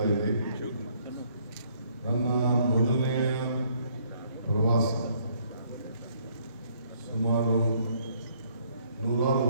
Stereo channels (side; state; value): both; inverted; correlation -0.66